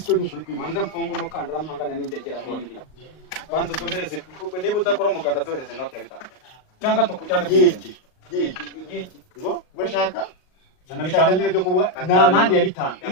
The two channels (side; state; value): right; late; 38 ms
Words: n'ukuri kwimanza mfunga umukandara mpangana n'ingegera nk'indi banza duhereze kuko niba udakora umuganda duhereze note ya 5 cyangwa tukujyane yiki ngo bashaka zana 5 nyine byo kuba na mande ya 5